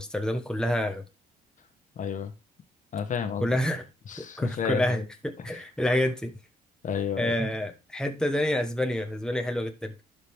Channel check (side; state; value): both; normal; correlation 0.80